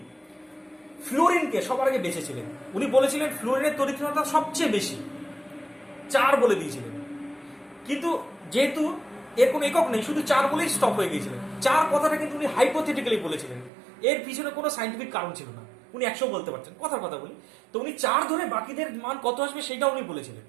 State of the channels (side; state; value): left; drops out; at 13.7 s